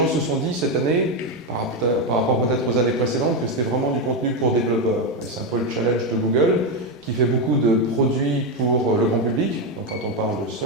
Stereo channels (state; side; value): normal; both; correlation 0.08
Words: se sont dit cette année, par rapport peut-être aux années précédentes, que c'était vraiment du contenu pour développeurs. Et c'est un peu le challenge de Google, qui fait beaucoup de produits pour le grand public. Donc quand on parle de